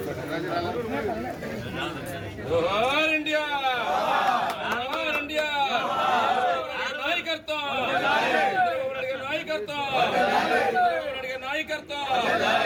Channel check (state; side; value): identical; both; correlation 1.00